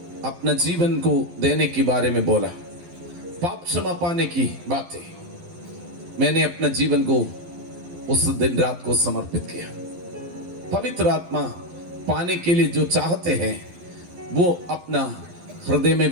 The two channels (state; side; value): late; left; 12 ms